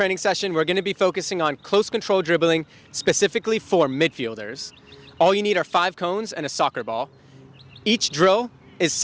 session, we're going to be focusing on close control dribbling, specifically for midfielders. All you need are 5 cones and a soccer ball. Each drill is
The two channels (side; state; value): both; identical; correlation 1.00